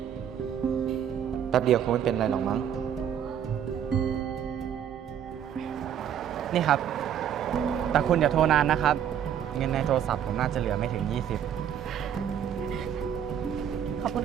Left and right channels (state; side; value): quieter; left; 9.2 dB